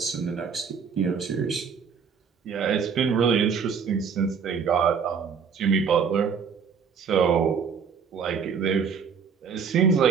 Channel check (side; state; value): left; quieter; 6.3 dB